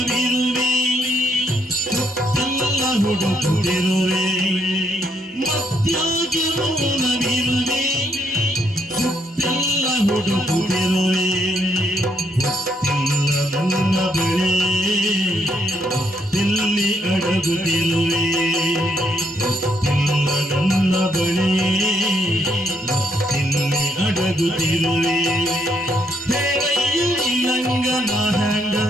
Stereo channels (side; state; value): both; normal; correlation 0.74